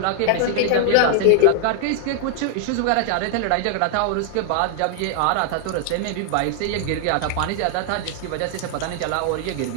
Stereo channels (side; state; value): both; different; correlation 0.00